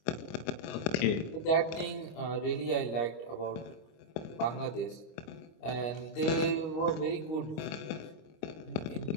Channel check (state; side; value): late; right; 25 ms